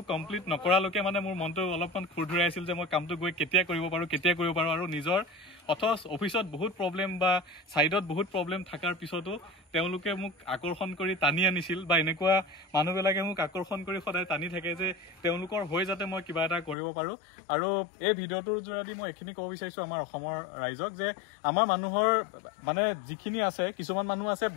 কমপ্লিট নকৰালৈকে মানে মোৰ মনটো অলপমান খুৰধুৰাই আছিল যে মই কামটো গৈ কেতিয়া কৰিব পাৰোঁ আৰু নিজৰ অথচ অফিচত বহুত প্ৰব্লেম বা ছাইডত বহুত প্ৰব্লেম থকাৰ পিছতো তেওঁলোকে মোক আকৰ্ষণ কৰি টানি আনিছিল বা এনেকুৱা মানুহবিলাকে মোক আকৰ্ষণ কৰি সদায় টানি থাকে যে তেওঁলোকৰ হৈ যাতে মই কিবা এটা কৰিব পাৰোঁ আৰু এই ভিডিঅ'টোৰ যোগেদি মই এইখিনি ক'ব বিচাৰিছোঁ আমাৰ অসমৰ ৰাইজক যে আমাৰ মানুহৰ মানে যিখিনি আছে কিছুমান মানুহ আছে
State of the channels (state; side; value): drops out; right; at 16.8 s